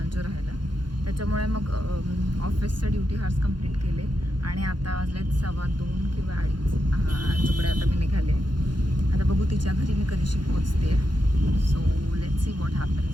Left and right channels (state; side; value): late; left; 0.71 ms